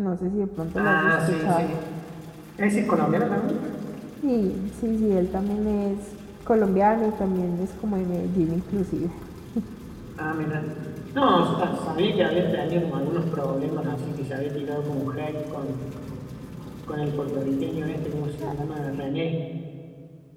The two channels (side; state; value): both; identical; correlation 1.00